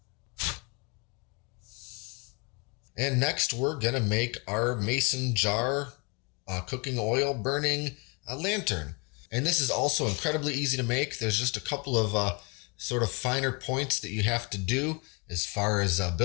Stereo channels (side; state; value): right; quieter; 31.5 dB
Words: And next we're going to make our mason jar cooking oil burning lantern. And this is also incredibly easy to make. There's just a couple of sort of finer points that you have to do as far as